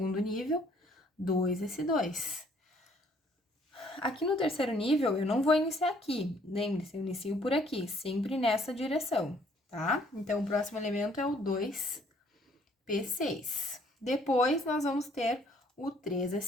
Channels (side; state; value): both; normal; correlation 0.62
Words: nível, 2s2. Aqui no terceiro nível, eu não vou iniciar aqui. Lembre-se, eu inicio por aqui, sempre nessa direção, tá? Então, o próximo elemento é o 2p6. Depois, nós vamos ter o